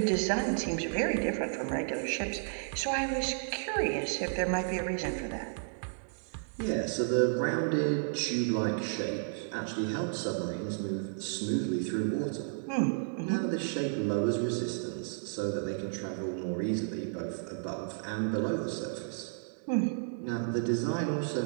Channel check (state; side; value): silent; left; digital silence